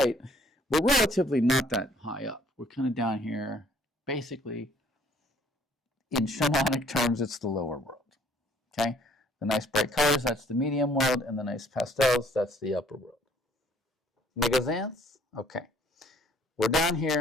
we're relatively not that high up. We're kind of down here. Basically, in shamanic terms, it's the lower world. Okay? The nice bright colors, that's the medium world, and the nice pastels, that's the upper world. Make sense? Okay. We're down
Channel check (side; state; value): both; normal; correlation 0.60